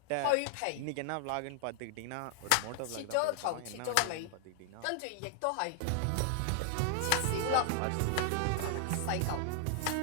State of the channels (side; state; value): both; different; correlation 0.00